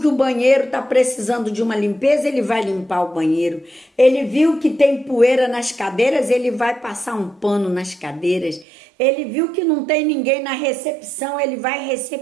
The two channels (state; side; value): drops out; left; at 8.7 s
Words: que o banheiro está precisando de uma limpeza, ele vai limpar o banheiro. Ele viu que tem poeira nas cadeiras, ele vai passar um pano nas cadeiras. Ele viu que não tem ninguém na recepção, ele vai